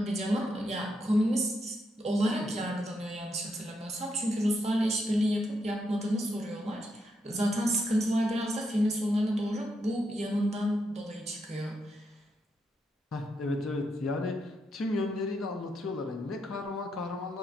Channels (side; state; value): both; normal; correlation 0.81